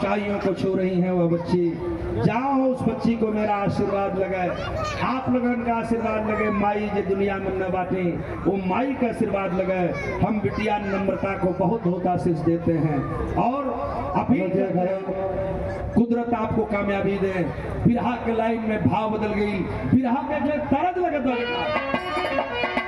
को छू रही हैं वह बच्ची। जाओ उस बच्ची को मेरा आशीर्वाद लगे, आप लोगों का आशीर्वाद लगे। माई जो दुनिया में न बाटे वो माई का आशीर्वाद लगे। हम बिटिया नम्रता को बहुत बहुत आशीष देते हैं और अभी कुदरत आपको कामयाबी दे। बिरहा के लाइन में भाव बदल गई, बिरहा के जो तरज लगे तो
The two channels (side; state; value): both; identical; correlation 1.00